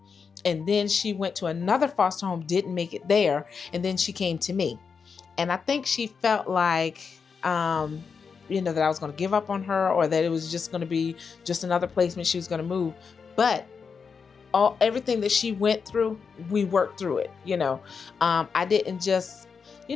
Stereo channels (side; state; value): right; quieter; 5.7 dB